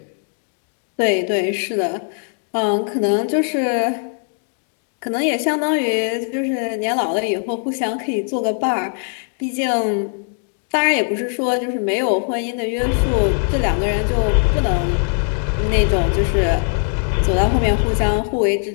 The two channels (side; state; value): right; silent; 56 dB below the other